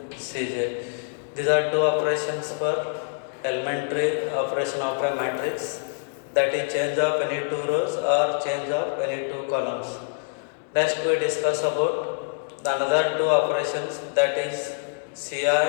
Cj. These are two operations for elementary operation of a matrix, that is change of any two rows or change of any two columns. Next we discuss about the another two operations, that is Ci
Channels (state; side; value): silent; right; digital silence